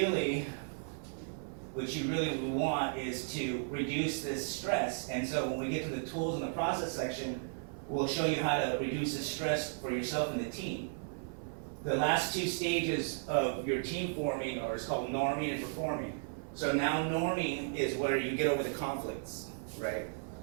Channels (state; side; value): silent; left; 54 dB below the other